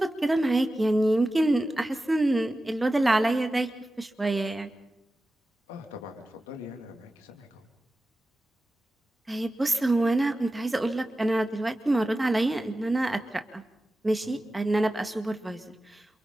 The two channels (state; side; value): normal; both; correlation 0.94